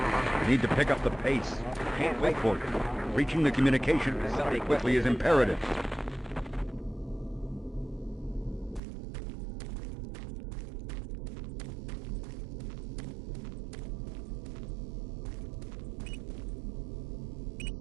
You need to pick up the pace. Can't wait for you. Reaching the communication facility quickly is imperative.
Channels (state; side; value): drops out; left; at 8.8 s